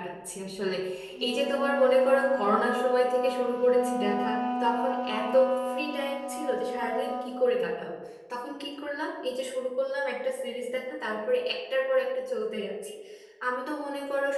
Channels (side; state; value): both; identical; correlation 1.00